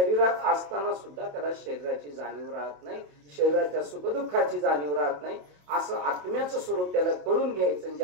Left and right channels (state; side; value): late; left; 28 ms